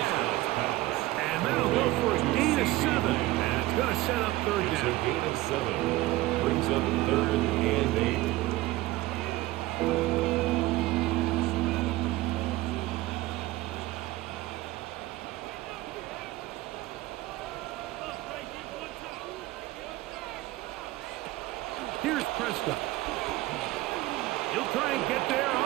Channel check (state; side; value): quieter; left; 18.0 dB